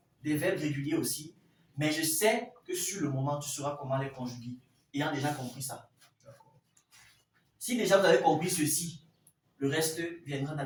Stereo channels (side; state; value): both; identical; correlation 1.00